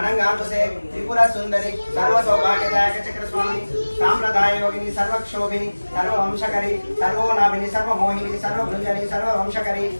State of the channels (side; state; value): both; inverted; correlation -1.00